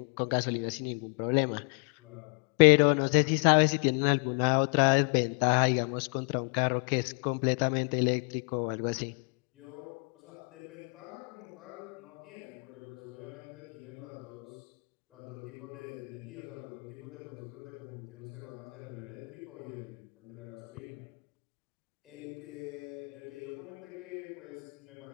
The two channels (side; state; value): right; quieter; 36.8 dB